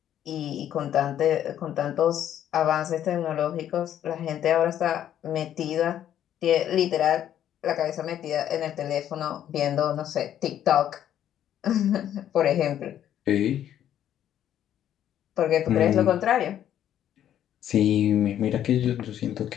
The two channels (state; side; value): quieter; right; 10.8 dB